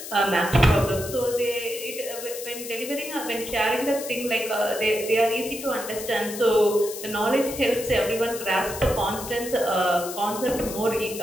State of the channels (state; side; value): noise; left; hiss, 10 dB below the sound